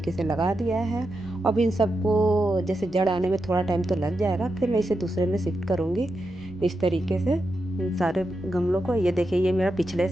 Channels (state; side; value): noise; right; rumble, 22 dB below the sound